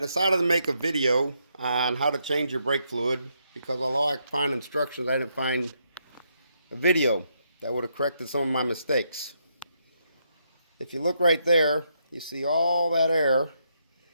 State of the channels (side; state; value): both; inverted; correlation -0.77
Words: decided to make a video on how to change your brake fluid because although I could find instructions, I didn't find a video that would have corrected some of my mistakes. If you look right there, you see all that air